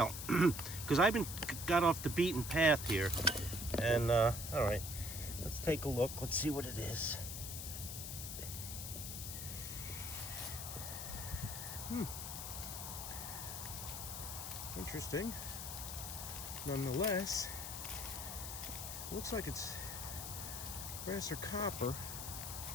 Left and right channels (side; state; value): left; noise; hiss, 6 dB below the sound